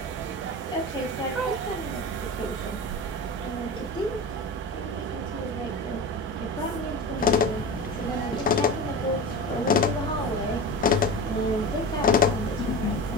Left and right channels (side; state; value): both; normal; correlation 0.28